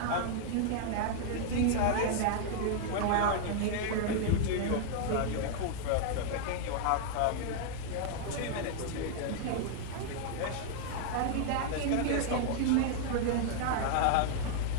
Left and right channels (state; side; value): different; both; correlation 0.00